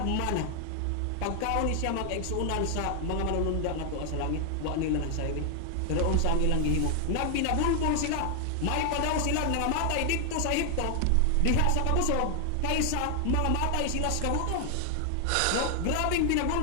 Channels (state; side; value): different; both; correlation 0.00